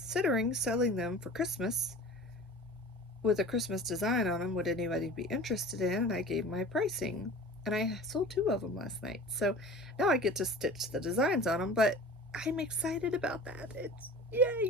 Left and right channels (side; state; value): both; normal; correlation 0.39